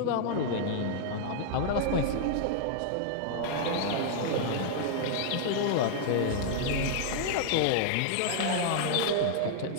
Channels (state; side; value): different; both; correlation -0.01